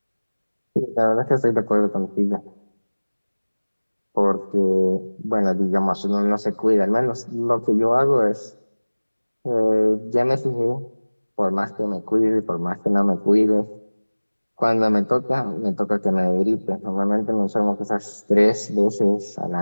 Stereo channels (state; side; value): inverted; both; correlation -1.00